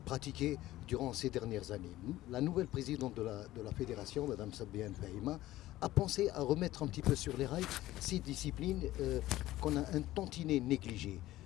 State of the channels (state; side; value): quieter; right; 15.8 dB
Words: pratiquées durant ces dernières années. La nouvelle présidente de la fédération, Mme Sabiane Fahima, a pensé à remettre un petit peu sur les rails ces disciplines qu'on a un tantinet négligées,